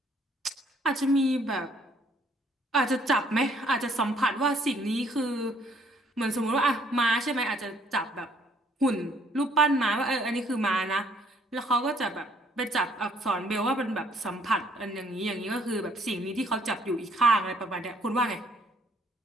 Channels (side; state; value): both; normal; correlation 0.64